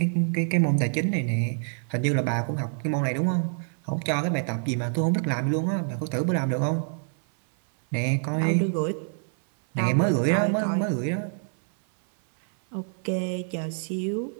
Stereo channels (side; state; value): left; silent; 58 dB below the other